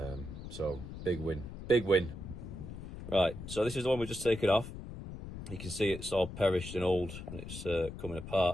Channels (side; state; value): left; noise; rumble, 10 dB below the sound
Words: So big win, big win. Right, so this is the one we've just taken off. You can see it's all perished and old and it's coming